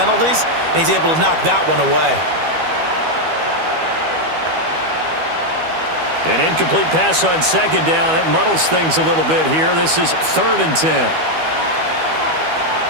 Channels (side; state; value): left; late; 12 ms